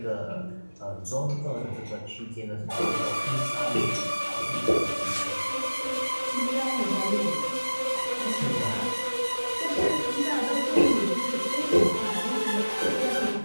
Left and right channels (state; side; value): inverted; both; correlation -1.00